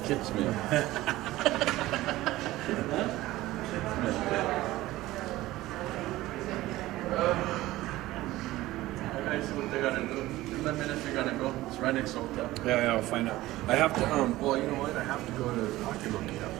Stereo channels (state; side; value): quieter; left; 17.1 dB